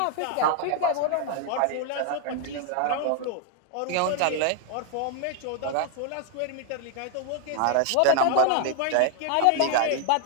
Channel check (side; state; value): both; different; correlation 0.00